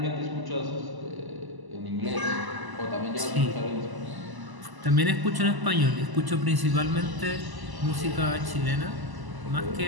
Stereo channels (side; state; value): left; late; 1.0 ms